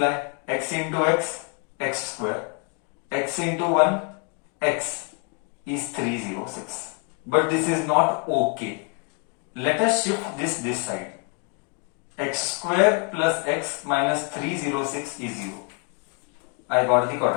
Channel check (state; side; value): quieter; right; 35.6 dB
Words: x into x square, x into 1 x is 306. But this is not okay. Let us shift this side. X square plus x minus 306 is 0. I got the